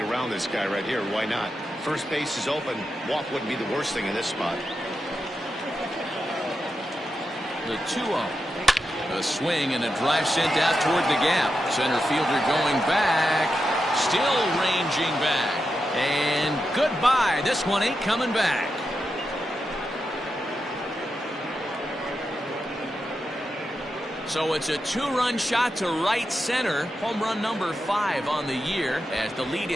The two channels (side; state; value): both; normal; correlation 0.88